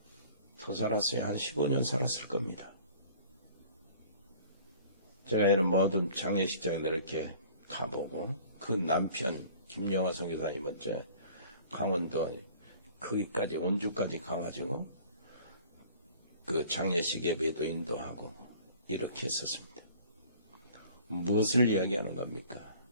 더 살았어요. 한 15년 살았을 겁니다. 제가 이런 모든 장례식장에 이렇게 가보고 그 남편 김영화 선교사님은 강원도 거기까지 원주까지 가가지고 그 장례식 예배도 인도하고 이렇게 했었습니다. 무엇을 이야기하는 겁니까?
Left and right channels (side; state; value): both; inverted; correlation -0.49